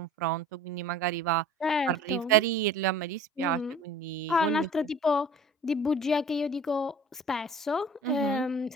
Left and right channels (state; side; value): normal; both; correlation 0.45